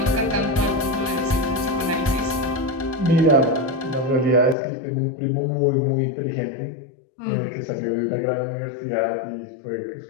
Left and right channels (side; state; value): right; drops out; at 4.5 s